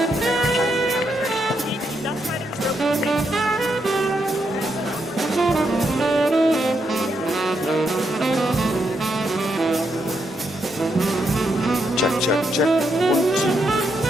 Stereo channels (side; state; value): both; normal; correlation 0.80